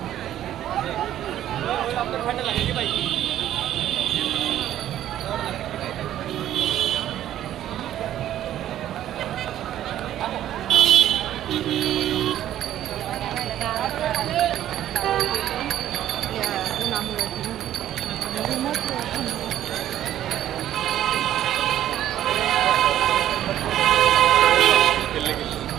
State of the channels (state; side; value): quieter; left; 12.0 dB